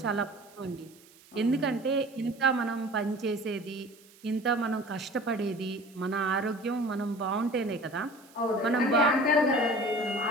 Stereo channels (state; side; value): noise; right; hiss, 26 dB below the sound